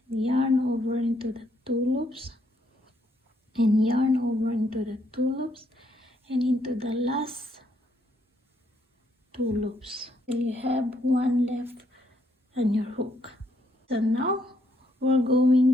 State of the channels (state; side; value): normal; both; correlation 0.72